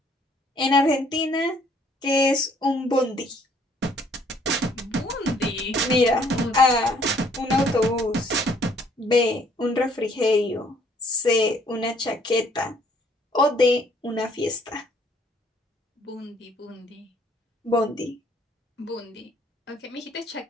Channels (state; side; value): normal; both; correlation 0.63